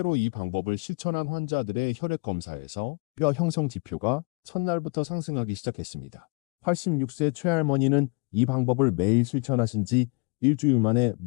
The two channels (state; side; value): quieter; right; 33.4 dB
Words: 이 방법을 실천한 환자들의 혈액 검사에서 뼈 형성 지표가 첫날부터 상승하기 시작했습니다. 86세 최할머니는 이 방법을 매일 실천하신 지 일주일 만에